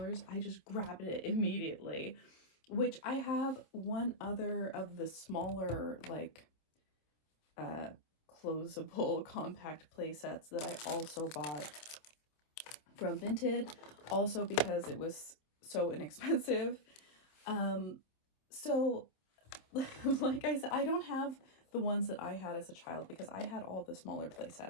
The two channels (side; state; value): right; late; 26 ms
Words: I just grabbed it immediately, which I have one other of the smaller, like, closable compact play sets that I also bought from Vinted, also because it was so inexpensive. So like I said, I don't have the ones that I had as a child because I had all the smaller play